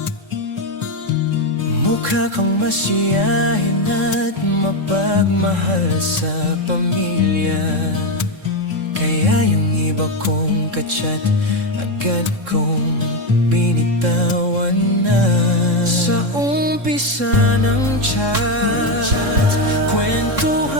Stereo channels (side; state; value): left; late; 3.7 ms